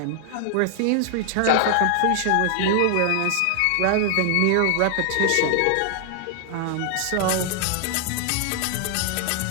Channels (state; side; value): different; both; correlation 0.00